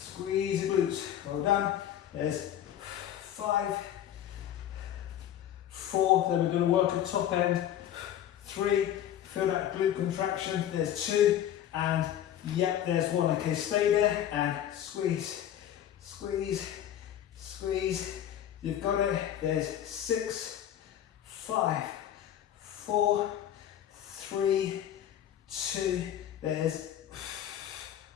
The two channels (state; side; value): quieter; right; 10.9 dB